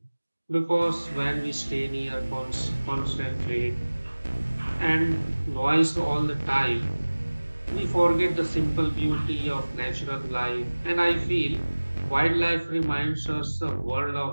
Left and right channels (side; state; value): both; inverted; correlation -1.00